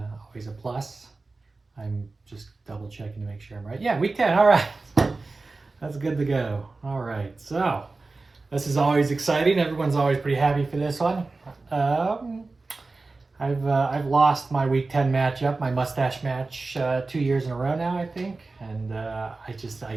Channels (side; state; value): left; quieter; 3.6 dB